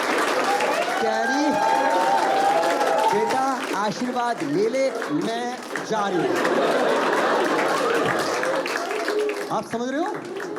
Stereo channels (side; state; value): both; identical; correlation 1.00